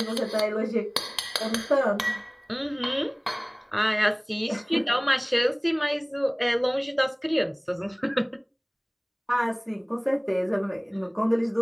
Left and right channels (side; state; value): both; identical; correlation 1.00